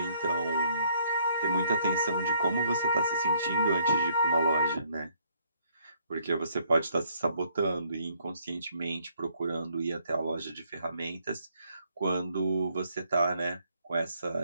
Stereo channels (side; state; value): both; inverted; correlation -0.67